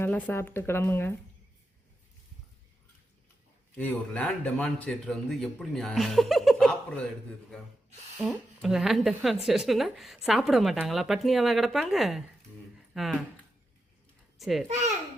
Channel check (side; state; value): both; normal; correlation 0.88